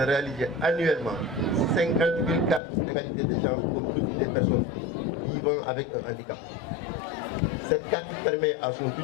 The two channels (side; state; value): right; drops out; at 2.6 s